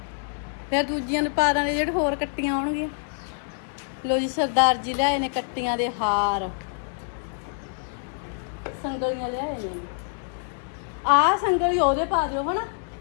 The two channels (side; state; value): right; silent; digital silence